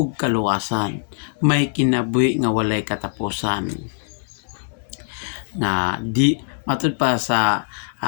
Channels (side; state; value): right; silent; digital silence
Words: kaluwasan. May kinabuhi nga walay katapusan. Na di matud pa sa